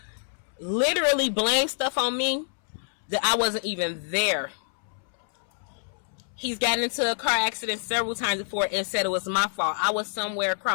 literally blame stuff on me that I wasn't even there. He's gotten into a car accident several times before and said it was my fault. I was somewhere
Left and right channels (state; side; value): silent; right; 60 dB below the other